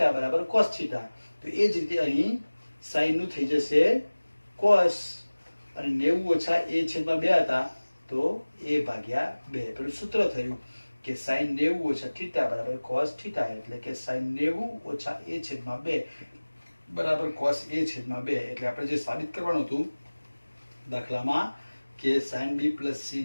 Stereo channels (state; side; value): inverted; both; correlation -1.00